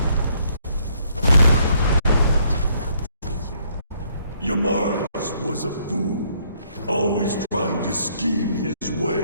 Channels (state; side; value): inverted; both; correlation -0.68